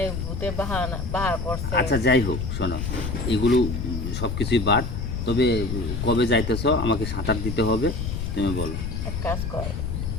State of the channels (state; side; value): noise; left; rumble, 4 dB below the sound